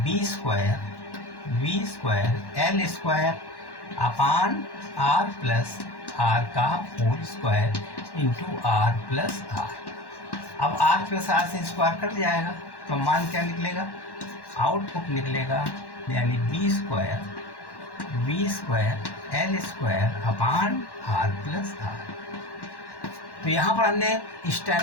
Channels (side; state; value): right; late; 1.1 ms